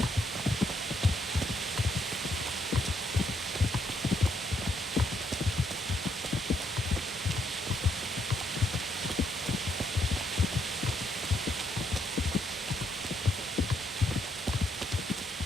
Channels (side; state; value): both; normal; correlation 0.74